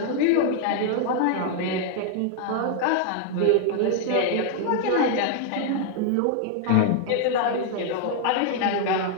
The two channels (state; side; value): different; both; correlation 0.00